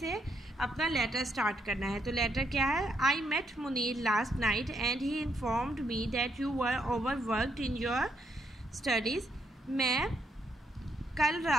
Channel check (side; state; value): both; normal; correlation 0.76